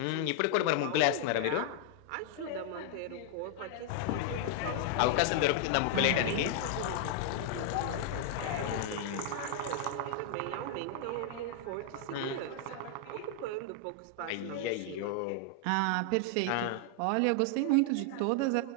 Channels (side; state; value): both; different; correlation 0.00